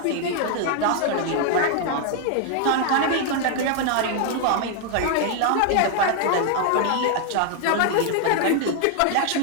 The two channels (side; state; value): both; different; correlation 0.00